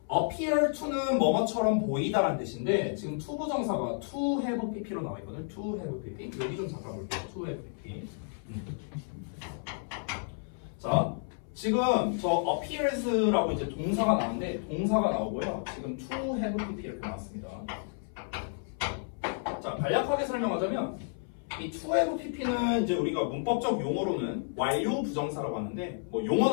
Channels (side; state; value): right; silent; 57 dB below the other